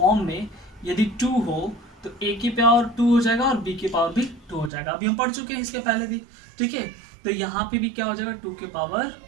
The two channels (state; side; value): drops out; left; at 4.7 s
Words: में यदि 2 हो तो a की पावर 2 हो जाएगा और b की पावर भी 2 हो जाएगा। अभी हम पढ़ चुके हैं इसके पहले भी, ठीक है। तो यहाँ पे भी क्या हो जाएगा, 2 की पावर